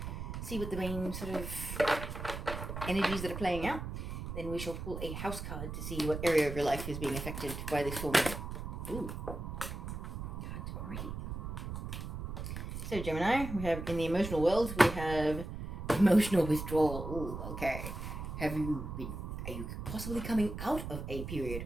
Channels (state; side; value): noise; right; rumble, 6 dB below the sound